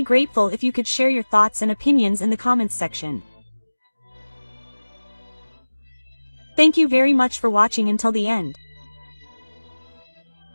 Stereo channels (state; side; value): inverted; both; correlation -1.00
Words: grateful if you could share your thoughts and opinions in the comments section. Thank you very much for watching until the end.